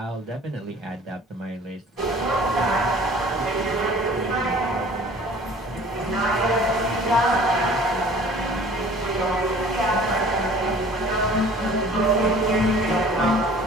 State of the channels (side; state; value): both; normal; correlation 0.48